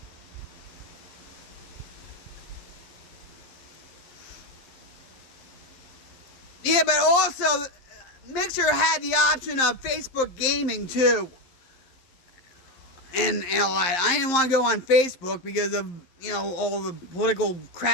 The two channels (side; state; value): right; late; 11 ms